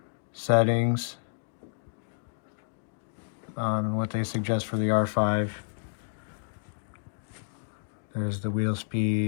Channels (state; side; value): silent; right; digital silence